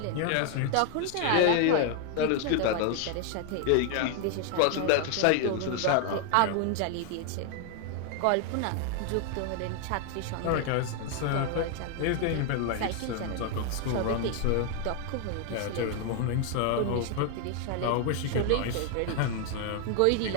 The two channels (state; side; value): different; both; correlation 0.00